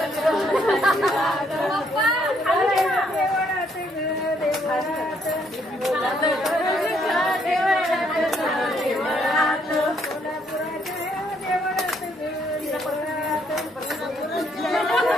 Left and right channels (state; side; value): normal; both; correlation 0.70